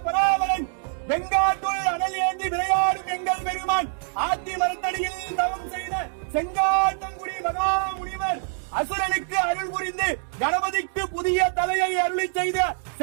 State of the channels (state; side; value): silent; left; digital silence